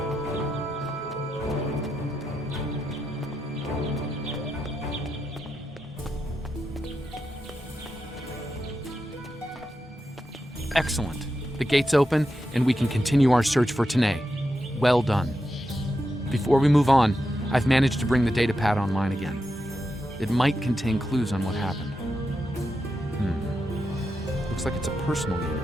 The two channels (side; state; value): both; normal; correlation 0.87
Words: Excellent. The gate's open, and we can continue our search for Tanae. Well done. Before we move on, I've managed to bring the datapad online again. It might contain clues on what happened. Looks like it's a personal